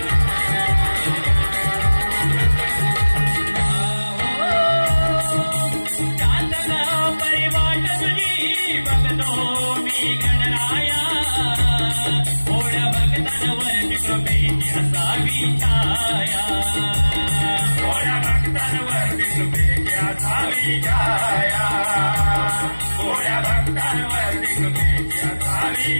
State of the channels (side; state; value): both; inverted; correlation -1.00